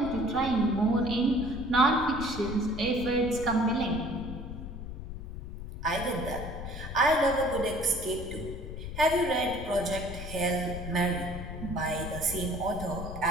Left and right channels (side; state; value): left; noise; rumble, 9 dB below the sound